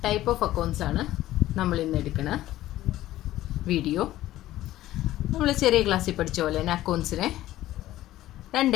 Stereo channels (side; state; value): right; quieter; 14.8 dB